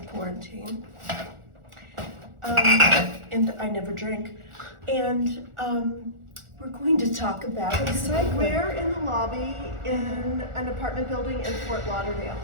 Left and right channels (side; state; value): left; late; 1.4 ms